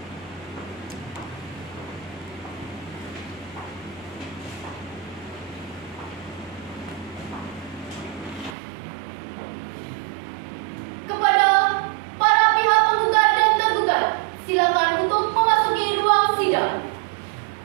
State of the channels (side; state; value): left; drops out; at 8.6 s